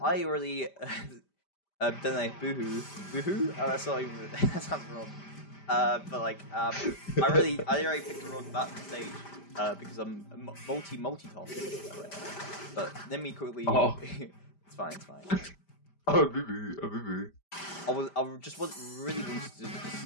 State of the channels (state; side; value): late; right; 5.0 ms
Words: I already don't know, boohoo. Oh, that's not even that sounds wrong. But like, I already picked the wrong map stage because I'm multitasking. But let me quickly. Oh. It's fine. Oh, boo. I just really wanted to